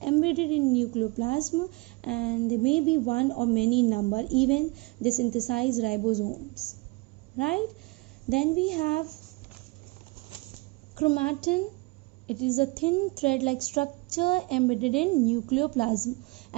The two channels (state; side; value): quieter; left; 25.9 dB